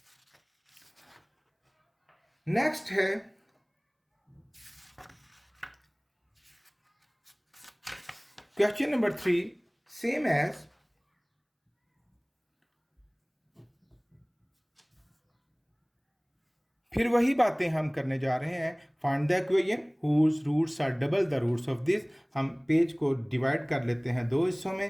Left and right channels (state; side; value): identical; both; correlation 1.00